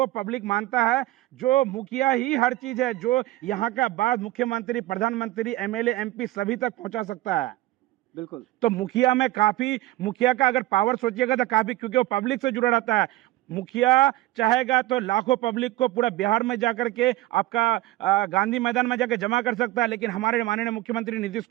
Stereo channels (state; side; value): quieter; left; 17.1 dB